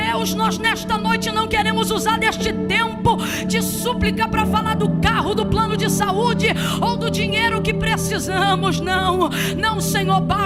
nós nesta noite não queremos usar deste tempo de súplica para falar do carro, do plano de saúde ou do dinheiro que precisamos. Não, não, Senhor,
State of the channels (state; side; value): identical; both; correlation 1.00